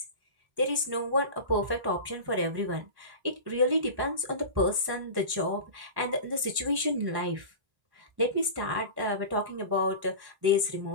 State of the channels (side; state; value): left; late; 1.1 ms